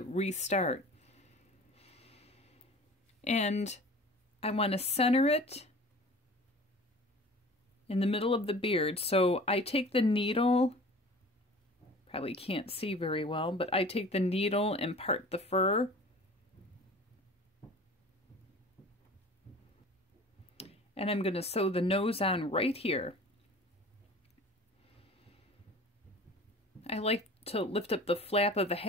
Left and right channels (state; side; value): normal; both; correlation 0.42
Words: restart. And I want to center it in the middle of the beard. So I take the needle, probably can't see very well, but I take the needle and part the fur. And I'm going to sew the nose on right here. I like to lift up the flap of the